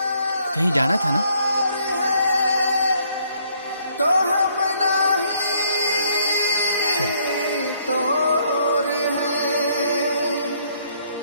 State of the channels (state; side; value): inverted; both; correlation -0.67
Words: कहीं जाना था ना? तो हम नहीं तोर हैं,